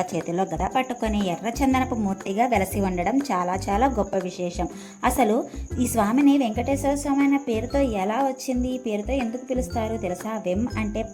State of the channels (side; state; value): both; identical; correlation 1.00